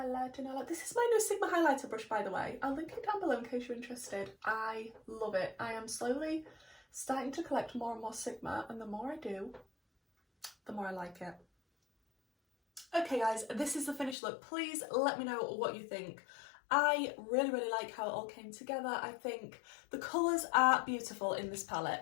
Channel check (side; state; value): right; drops out; at 14.2 s